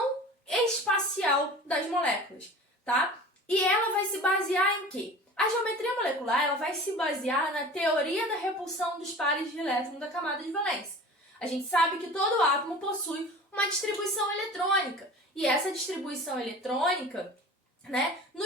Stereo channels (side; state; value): both; normal; correlation 0.39